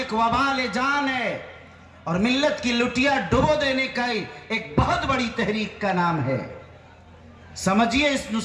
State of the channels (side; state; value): both; identical; correlation 1.00